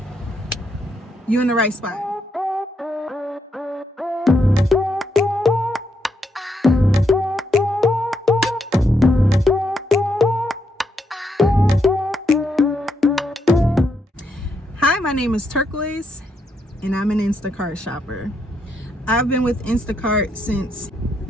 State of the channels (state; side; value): normal; both; correlation 0.78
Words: You're in the right spot. Hi, my name is Turquoise, and I'm an Instacart shopper. I've been with Instacart since